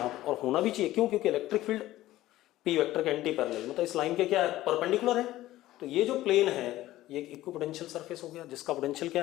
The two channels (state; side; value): quieter; right; 15.5 dB